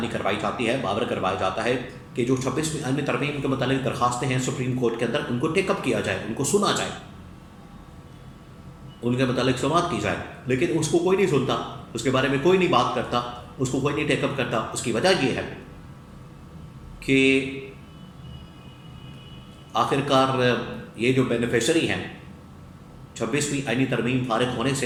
کروائی جاتی ہے، باور کروایا جاتا ہے کہ جو 26ویں آئینی ترمیم کے متعلق درخواستیں ہیں سپریم کورٹ کے اندر، ان کو ٹیک اپ کیا جائے، ان کو سنا جائے، ان کے متعلق سماعت کی جائے، لیکن اس کو کوئی نہیں سنتا، اس کے بارے میں کوئی نہیں بات کرتا، اس کو کوئی نہیں ٹیک اپ کرتا۔ اس کی وجہ یہ ہے کہ آخرکار یہ جو بینیفیشری ہیں 26ویں آئینی ترمیم فارغ ہونے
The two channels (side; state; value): both; identical; correlation 1.00